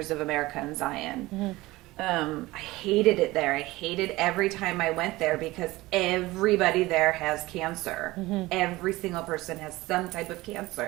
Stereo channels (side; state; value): left; quieter; 19.4 dB